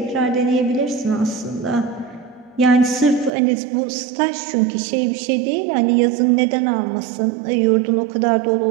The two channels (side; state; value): left; drops out; at 3.3 s